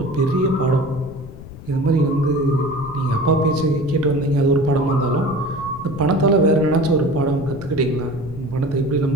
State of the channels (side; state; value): left; noise; rumble, 14 dB below the sound